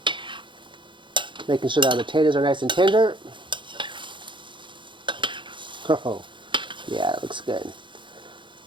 Making sure that our potatoes are nice and tender. Oh, yeah, it looks good.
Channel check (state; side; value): late; left; 0.23 ms